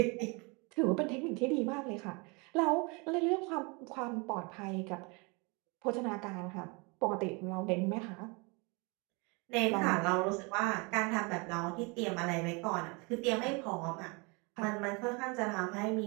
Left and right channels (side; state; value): left; quieter; 29.8 dB